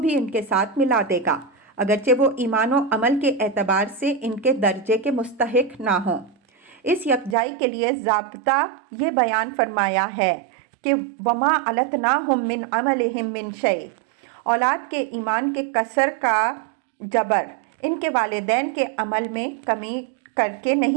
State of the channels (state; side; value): drops out; left; at 7.4 s